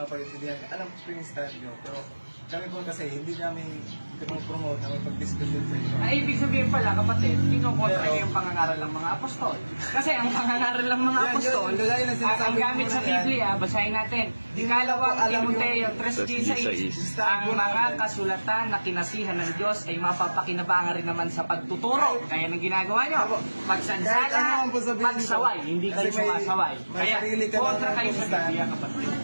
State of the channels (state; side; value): inverted; both; correlation -1.00